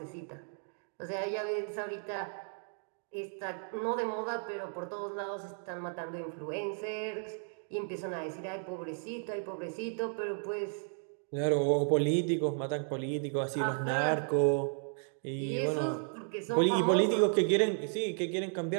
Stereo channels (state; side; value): silent; left; 55 dB below the other